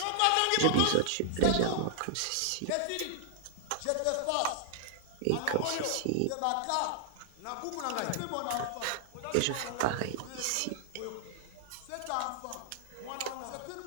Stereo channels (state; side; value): different; both; correlation 0.00